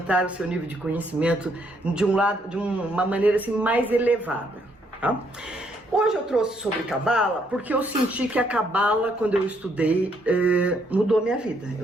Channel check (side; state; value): both; normal; correlation 0.71